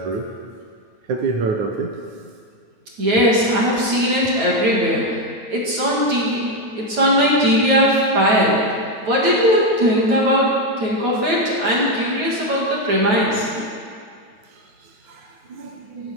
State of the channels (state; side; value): late; left; 9.2 ms